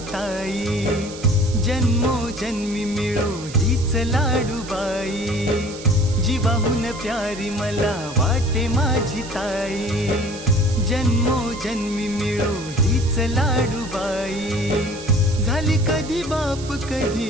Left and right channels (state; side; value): noise; right; hiss, 15 dB below the sound